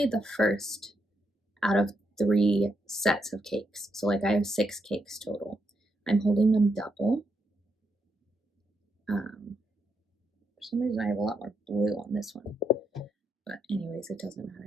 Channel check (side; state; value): both; normal; correlation 0.80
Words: the first out of 3 sets of cakes. So like I have 6 cakes total. I'm holding them double. For some reason I have a lot more blue on this one. But anyways, it doesn't